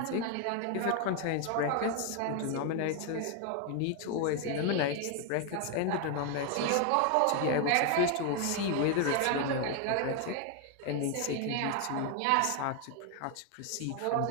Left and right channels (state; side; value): different; both; correlation 0.01